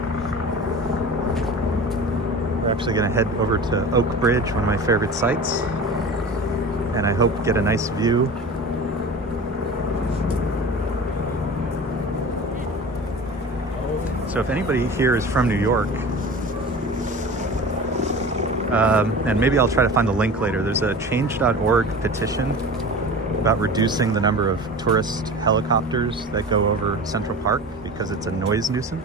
We're actually going to head over to Oak Bridge, one of my favorite sites, and I hope get a nice view. So if anybody here is from New York, and maybe I'll try to find the link later, there's a change.org petition about reducing the number of tourist helicopters that go over Central Park because it's a noise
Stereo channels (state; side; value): normal; both; correlation 0.35